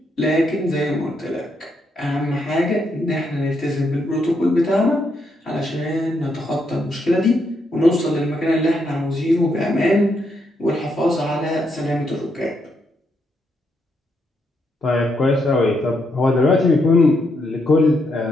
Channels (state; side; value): normal; both; correlation 0.78